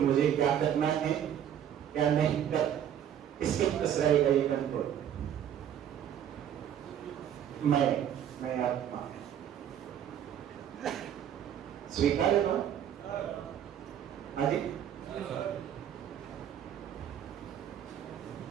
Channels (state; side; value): quieter; left; 9.7 dB